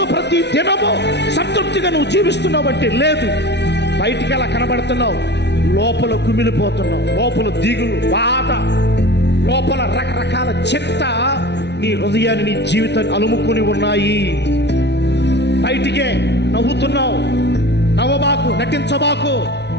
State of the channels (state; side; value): late; right; 0.50 ms